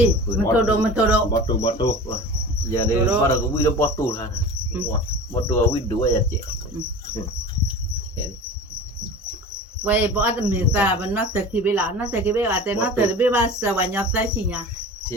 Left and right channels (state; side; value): normal; both; correlation 0.35